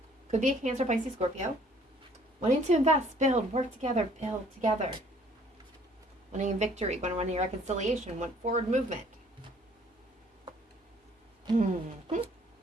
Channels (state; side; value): normal; both; correlation 0.59